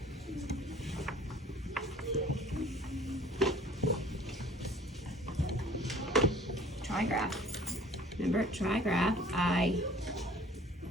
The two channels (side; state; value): both; normal; correlation 0.50